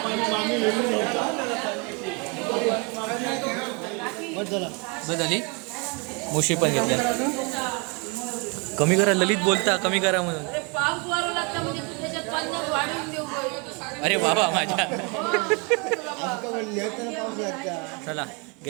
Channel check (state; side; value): quieter; left; 32.1 dB